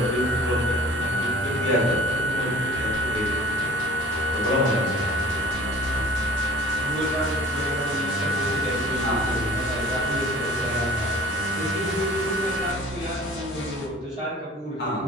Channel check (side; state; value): both; normal; correlation 0.47